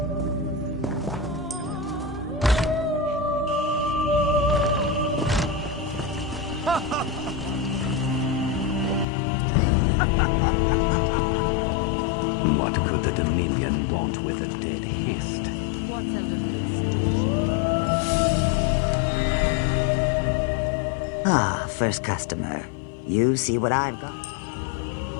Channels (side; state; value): right; drops out; at 9.1 s